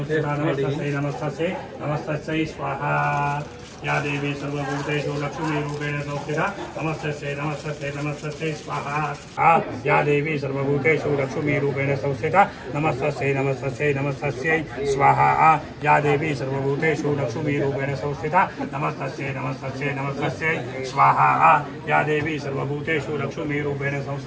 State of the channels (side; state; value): both; identical; correlation 1.00